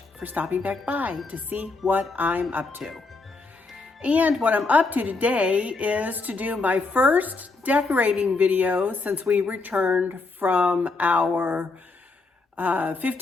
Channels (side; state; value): right; quieter; 3.8 dB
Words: for stopping back by to see what I'm up to. And what I'm up to today is to do my first decorating video since we returned from our